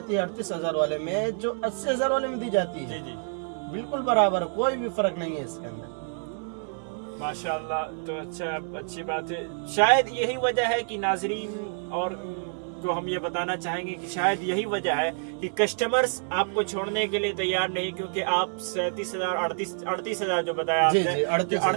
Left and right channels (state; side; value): silent; left; digital silence